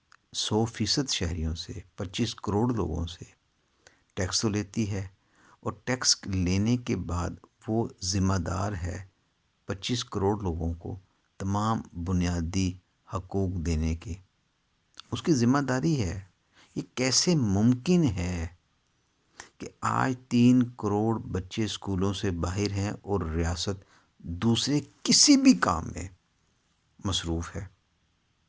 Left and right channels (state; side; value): identical; both; correlation 1.00